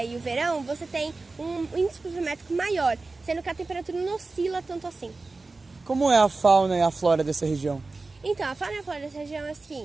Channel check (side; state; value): left; quieter; 3.6 dB